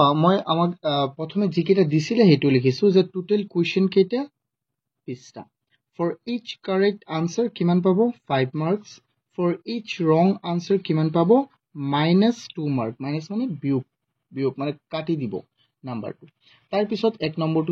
মই আমাক প্ৰথমে যিকেইটা দিছিলে হেতু লিখিছো যে টোটাল কোৱেশ্চন কেইটা 20টা for each correct answer কিমান পাব 5 marks for each wrong answer কিমান পাব -2 mark মাইনাস মানে বিয়োগ মানে কাটি দিব নাম্বাৰটো তাৰ পিছত এক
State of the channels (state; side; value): identical; both; correlation 1.00